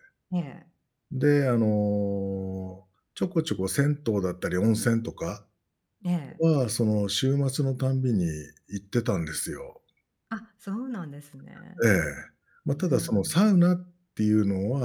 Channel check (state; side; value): identical; both; correlation 1.00